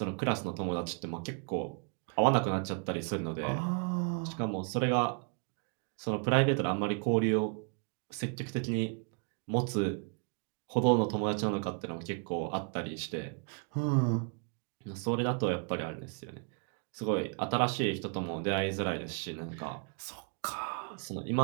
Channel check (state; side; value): quieter; left; 39.5 dB